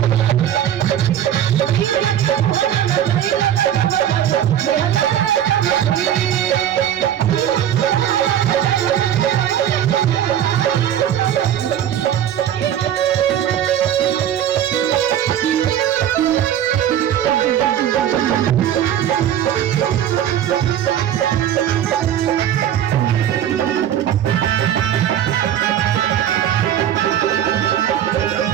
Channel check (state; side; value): quieter; left; 10.5 dB